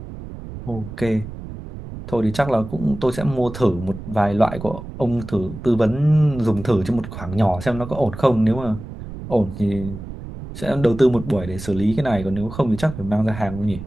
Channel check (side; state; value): right; noise; rumble, 11 dB below the sound